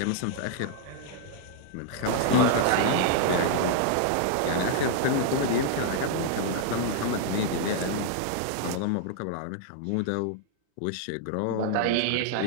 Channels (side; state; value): both; different; correlation -0.01